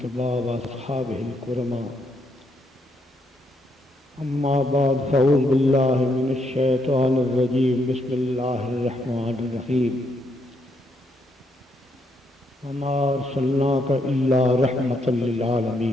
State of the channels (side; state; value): both; normal; correlation 0.76